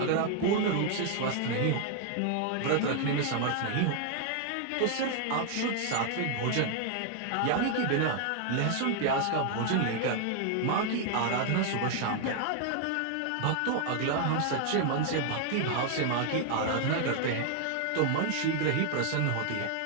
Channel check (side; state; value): both; different; correlation 0.00